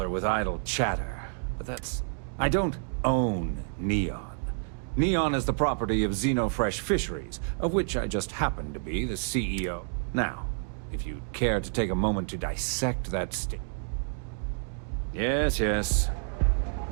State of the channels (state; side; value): silent; left; 59 dB below the other